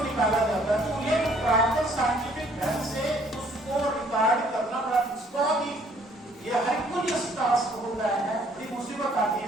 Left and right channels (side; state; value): both; normal; correlation 0.61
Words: निकाला जाता है। तो ये प्रॉपर साइंटिफिक ढंग से उसको रिकॉर्ड करना बड़ा बहुत ही ये हरकुलियस टास्क होता है, बड़ी मुसीबत आती